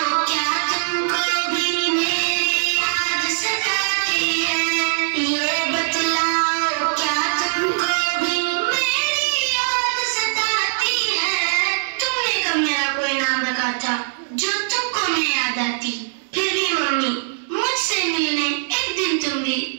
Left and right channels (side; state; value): left; silent; digital silence